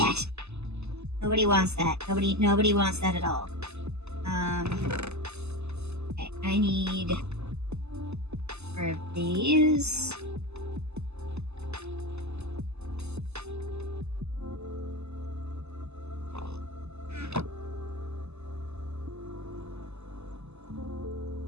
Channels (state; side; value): late; left; 0.80 ms